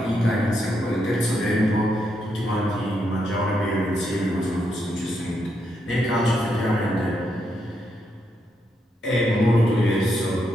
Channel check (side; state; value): both; normal; correlation 0.80